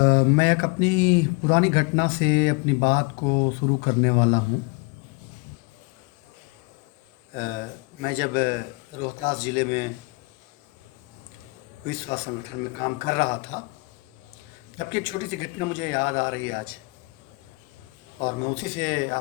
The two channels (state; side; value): quieter; right; 29.3 dB